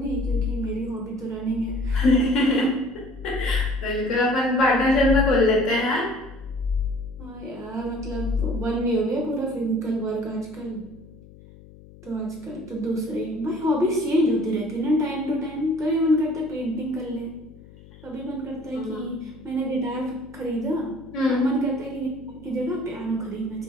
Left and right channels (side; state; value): left; noise; hum, 21 dB below the sound